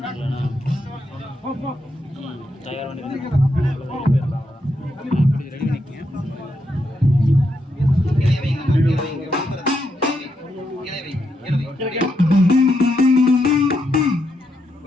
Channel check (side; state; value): both; normal; correlation 0.81